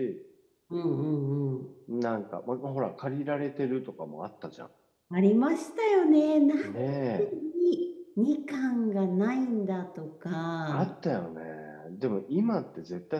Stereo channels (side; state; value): both; identical; correlation 1.00